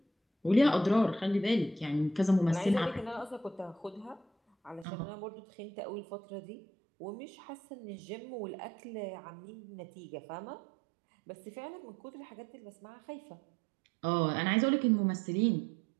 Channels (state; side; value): drops out; left; at 4.9 s